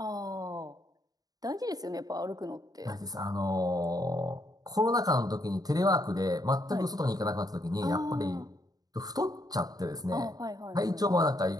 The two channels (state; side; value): late; left; 0.18 ms